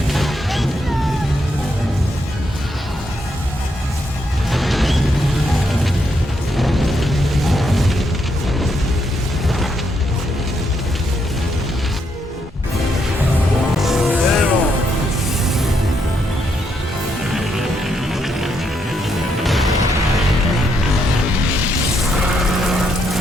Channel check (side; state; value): both; normal; correlation 0.78